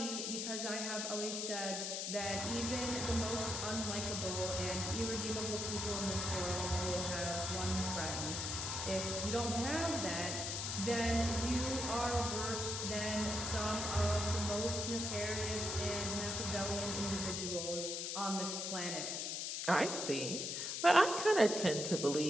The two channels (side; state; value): left; noise; hiss, 2 dB below the sound